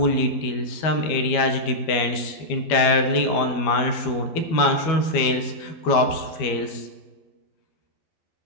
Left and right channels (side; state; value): right; late; 12 ms